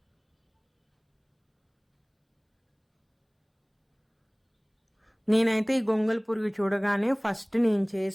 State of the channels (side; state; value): both; identical; correlation 1.00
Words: నేనైతే ఈ గొంగలి పురుగు చూడగానే ఫస్ట్ నేను